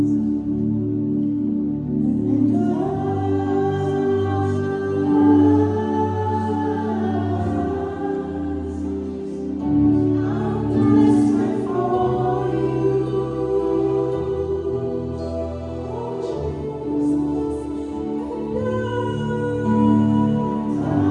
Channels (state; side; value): identical; both; correlation 1.00